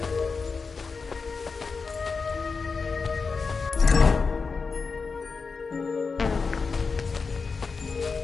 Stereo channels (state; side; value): quieter; right; 4.8 dB